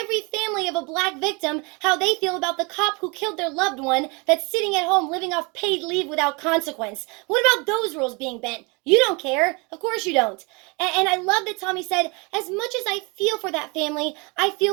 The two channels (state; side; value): quieter; left; 29.5 dB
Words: family of a black victim how they feel about the cop who killed their loved one that's sitting at home living off paid leave without consequence? What about those rules being bent? You don't care. Of course you don't. And I love that Tomi said, as much as I feel for that family, I